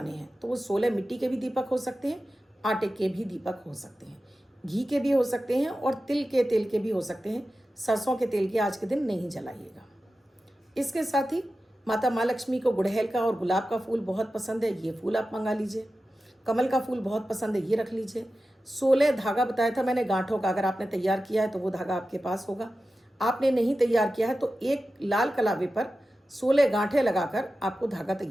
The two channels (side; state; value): both; normal; correlation 0.93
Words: हैं। तो वो 16 मिट्टी के भी दीपक हो सकते हैं, आटे के भी दीपक हो सकते हैं, घी के भी हो सकते हैं और तिल के तेल के भी हो सकते हैं। सरसों के तेल के आज के दिन नहीं जलाइएगा। इसके साथ ही माता माँ लक्ष्मी को गुड़हल का और गुलाब का फूल बहुत पसंद है, ये फूल आप मंगा लीजिए। कमल का फूल बहुत पसंद है, ये रख लीजिए। 16 धागा बताया था मैंने गांठों का, अगर आपने तैयार किया है तो वो धागा आपके पास होगा। आपने नहीं तैयार किया है तो एक लाल कलावे पर 16 गांठें लगाकर आपको धागा